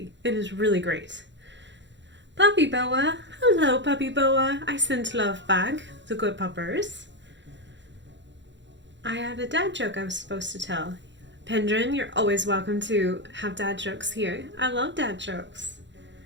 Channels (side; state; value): left; late; 0.53 ms